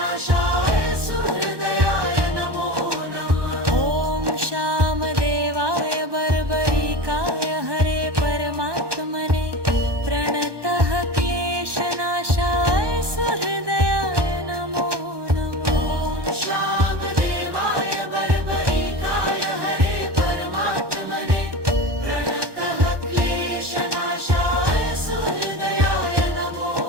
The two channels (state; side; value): late; left; 1.2 ms